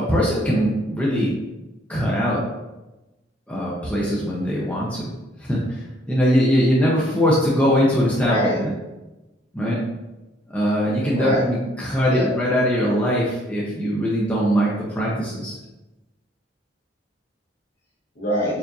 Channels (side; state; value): both; normal; correlation 0.64